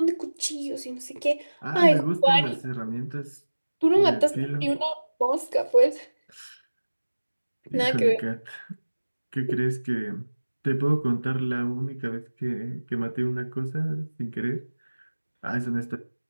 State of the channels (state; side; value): inverted; both; correlation -1.00